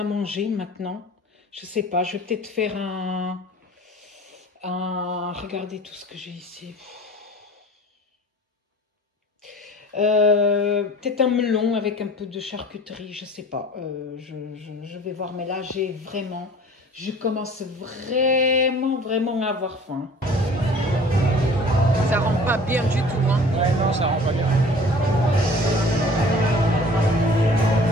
manger maintenant? Je sais pas. Je vais peut-être faire Regardez tout ce que j'ai ici. Peut-être un melon avec un peu de charcuterie, je sais pas. Je vais voir, mais là je commence vraiment à avoir faim. Ça rend pas bien du tout, hein. Ouais, non, ça rend pas bien.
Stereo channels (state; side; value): normal; both; correlation 0.46